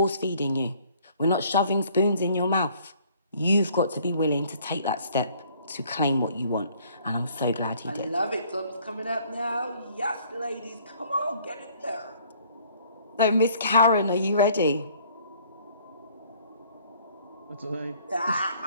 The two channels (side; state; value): both; inverted; correlation -0.59